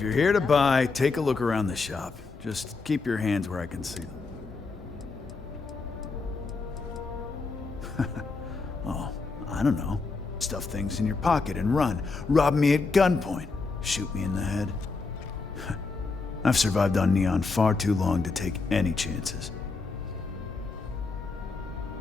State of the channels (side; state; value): right; quieter; 4.1 dB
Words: you're here to buy, take a look around the shop. Just keep your hands where I can see them. Oh, I don't know. Stuff things in your pocket and run. Rob me at gunpoint. Shoot me in the head. I've survived on Neon far too long to take any chances.